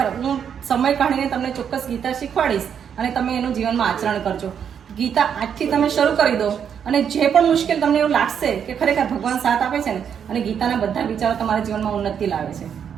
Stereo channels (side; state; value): left; quieter; 8.0 dB